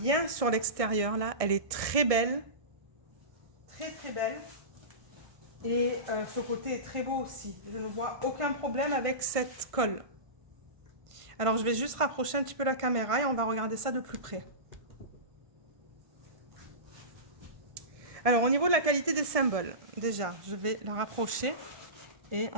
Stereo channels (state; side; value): late; left; 1.6 ms